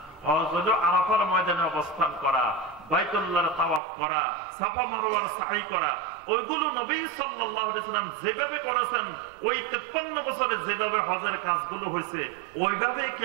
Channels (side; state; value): left; drops out; at 3.8 s